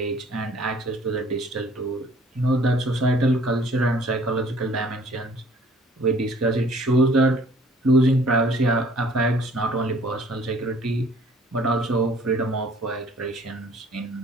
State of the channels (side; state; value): both; normal; correlation 0.56